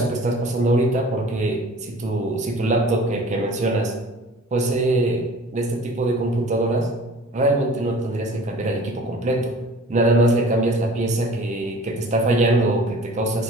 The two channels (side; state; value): both; normal; correlation 0.45